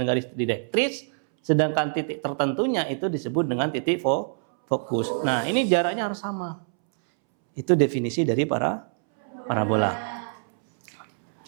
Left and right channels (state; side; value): silent; left; 62 dB below the other